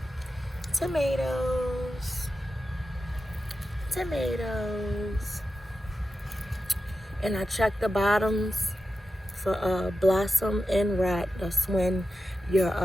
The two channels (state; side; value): normal; both; correlation 0.91